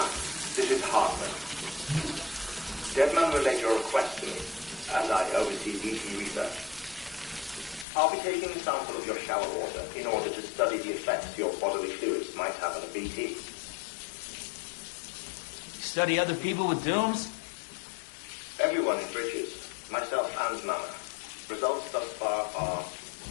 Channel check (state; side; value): drops out; right; at 7.9 s